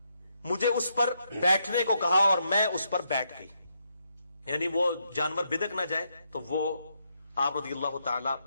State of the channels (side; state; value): both; inverted; correlation -0.78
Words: مجھے اس پر بیٹھنے کو کہا اور میں اس پر بیٹھ گئی، یعنی وہ جانور بدک نہ جائے، تو وہ آپ رضی اللہ تعالی